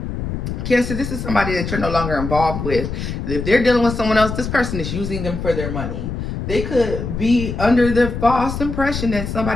Cancer, this is somebody that you're no longer involved with. If they're dealing with someone else, this person is using them for their money. They could be under the false impression that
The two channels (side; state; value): left; noise; rumble, 5 dB below the sound